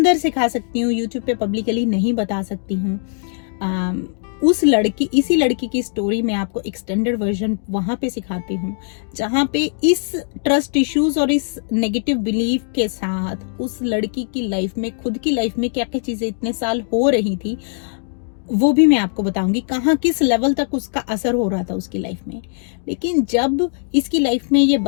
सिखा सकती हूँ, यूट्यूब पे पब्लिकली नहीं बता सकती हूँ। इसी लड़की की स्टोरी में आपको एक्सटेंडेड वर्जन वहां पे सिखाती हूँ, जहां पे इस ट्रस्ट इश्यूज और इस नेगेटिव बिलीफ के साथ उस लड़की की लाइफ में, खुद की लाइफ में क्या क्या चीजें इतने साल हो रही थी, वो भी मैं आपको बताऊंगी, कहाँ किस लेवल तक उसका असर हो रहा था उसकी लाइफ में। लेकिन जब इसकी लाइफ में ये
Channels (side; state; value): right; silent; digital silence